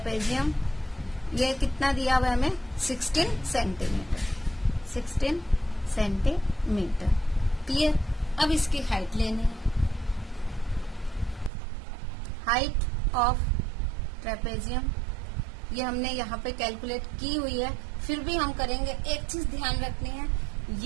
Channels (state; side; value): drops out; left; at 11.5 s